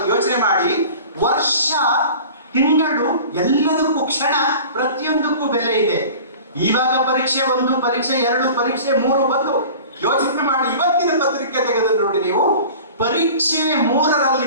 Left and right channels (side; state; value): both; inverted; correlation -0.41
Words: ಯೋಚನೆ ಮಾಡಿ. ವರ್ಷ, ತಿಂಗಳು, ಎಲ್ಲದಕ್ಕೂ ಕ್ಷಣ, ಪ್ರತಿಯೊಂದಕ್ಕೂ ಬೆಲೆ ಇದೆ. ಇವಾಗ ಪರೀಕ್ಷೆ 1, ಪರೀಕ್ಷೆ 2, ಪರೀಕ್ಷೆ 3 ಬಂದು ಯೋಚನೆ ಮಾಡಿ. ಇವತ್ತಿನ ಪತ್ರಿಕೆ ತೆಗೆದು ನೋಡಿ ನೀವು, ಪರೀಕ್ಷೆ